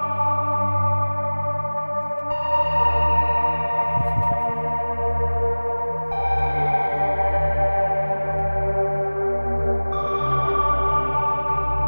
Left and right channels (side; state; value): both; inverted; correlation -1.00